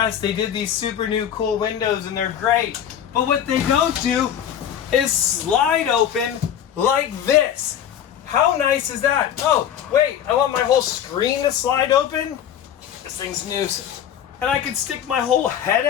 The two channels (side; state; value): right; quieter; 9.6 dB